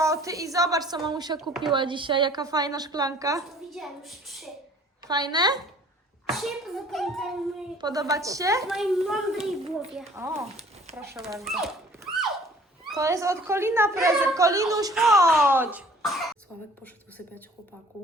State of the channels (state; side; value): normal; both; correlation 0.53